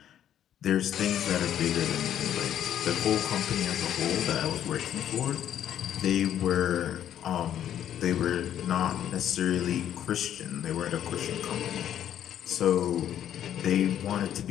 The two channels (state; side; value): quieter; right; 10.5 dB